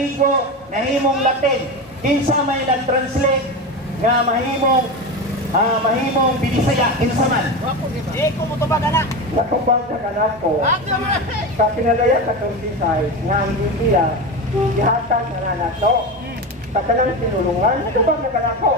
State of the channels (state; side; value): normal; both; correlation 0.21